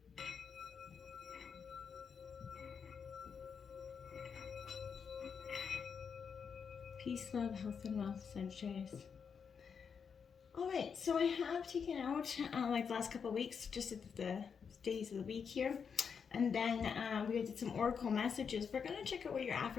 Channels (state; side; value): quieter; right; 6.4 dB